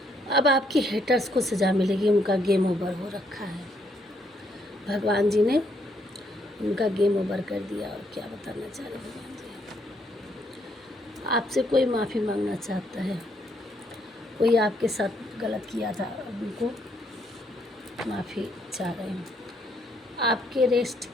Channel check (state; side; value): normal; both; correlation 0.72